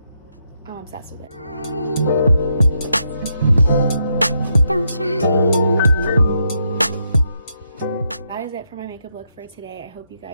I'm obsessed with it. Don't shine. That is it for my makeup look for today. I hope you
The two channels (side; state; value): both; inverted; correlation -0.79